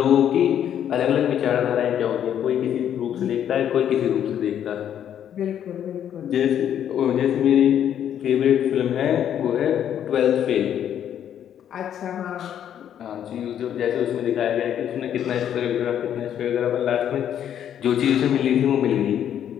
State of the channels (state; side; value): quieter; right; 9.8 dB